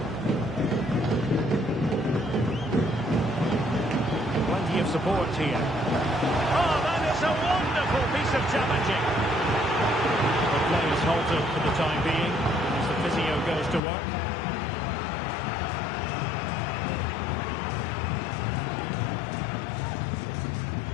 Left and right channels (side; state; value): right; drops out; at 13.8 s